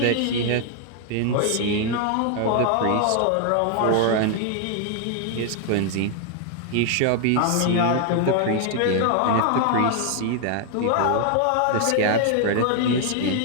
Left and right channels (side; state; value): both; different; correlation 0.00